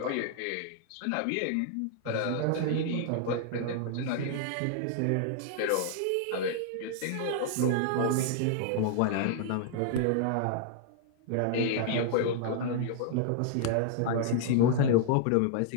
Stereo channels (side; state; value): both; different; correlation 0.00